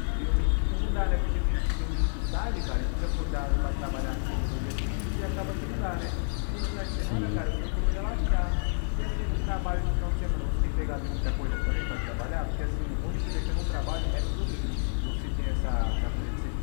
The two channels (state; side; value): silent; right; digital silence